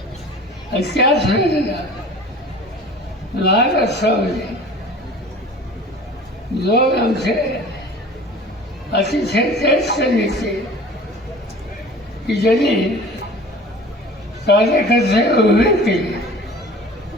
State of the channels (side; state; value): both; normal; correlation 0.43